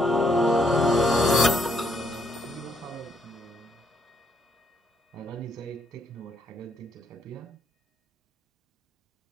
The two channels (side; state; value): both; normal; correlation 0.72